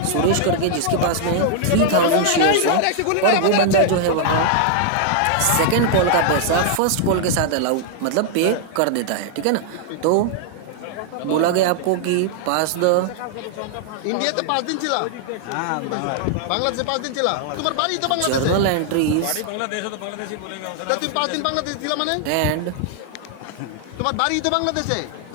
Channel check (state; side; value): different; both; correlation -0.01